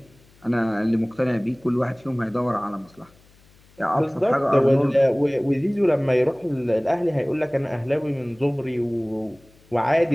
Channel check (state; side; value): noise; left; hum, 29 dB below the sound